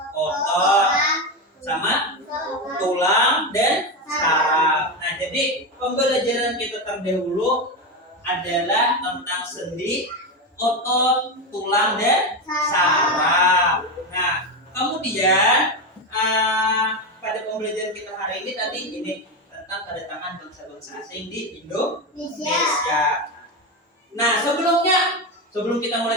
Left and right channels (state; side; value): normal; both; correlation 0.14